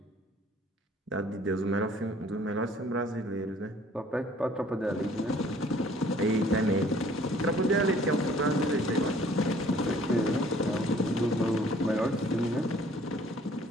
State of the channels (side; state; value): both; normal; correlation 0.56